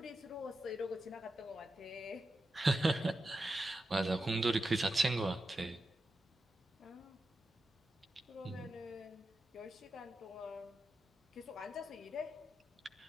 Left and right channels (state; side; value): normal; both; correlation 0.90